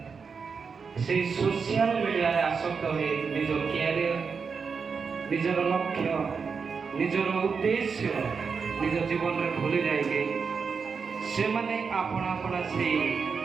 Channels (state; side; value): quieter; left; 5.5 dB